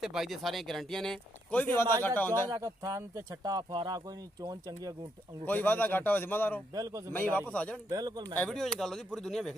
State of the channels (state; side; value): normal; both; correlation 0.77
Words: भाई दे सारे गारंटियां ने कोई भी वादा घाटा होंदा है थान ते छट्टा फवारा कोई नहीं चोन चंगी अंगूठे कोई वादा घाटा हो जिम्मेदार हो बिल्कुल मैं वापस आ जाण बिल्कुल मैं वीडियो च गल होदी पूरी दुनिया